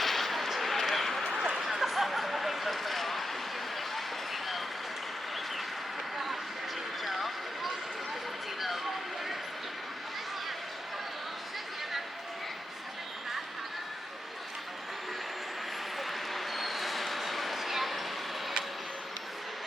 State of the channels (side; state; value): both; normal; correlation 0.87